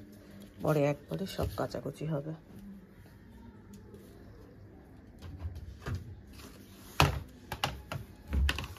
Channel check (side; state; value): both; identical; correlation 1.00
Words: পরে একবারে সব কাচাকুচি হবে।